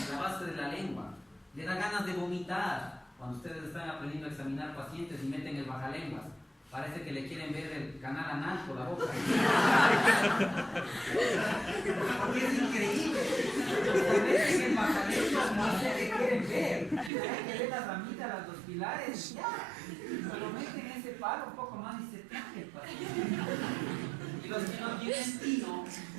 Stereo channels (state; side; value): drops out; left; at 17.1 s